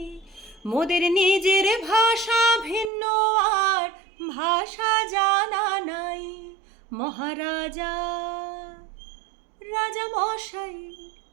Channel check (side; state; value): left; drops out; at 2.9 s